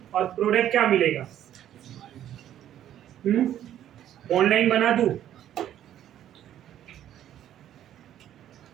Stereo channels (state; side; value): quieter; left; 11.3 dB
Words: और प्रोडक्ट क्या मिलेगा? बॉन्ड लाइन बना दूं,